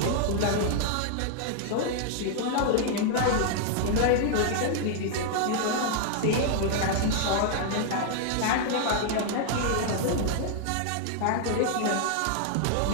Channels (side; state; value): both; different; correlation 0.00